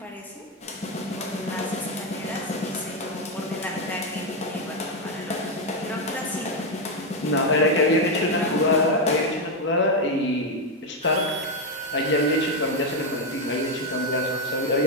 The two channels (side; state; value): both; normal; correlation 0.05